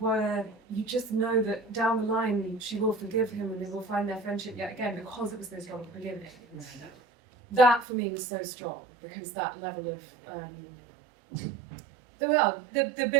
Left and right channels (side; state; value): left; drops out; at 7.9 s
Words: you just know that down the line she will forgive him and they will find their friendship yet again because it was so strong at the beginning. That for me was so strong because that level of the